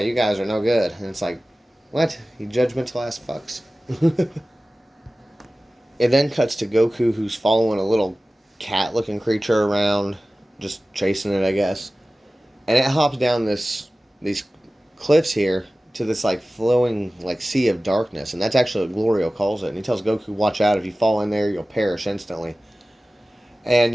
guys are no good. And it's like, what? You judgmental ass fucks. It then cuts to Goku, who's following a little cat-looking creature around, just chasing it, I guess. And it hops down these cliffs here to this like flowing like sea of darkness, and that's actually what Glorio calls it. And he tells Goku, "Watch out! If you fall in there, you'll perish instantly."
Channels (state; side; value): normal; both; correlation 0.97